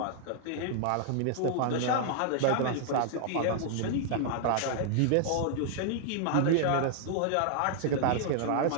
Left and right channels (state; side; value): different; both; correlation -0.01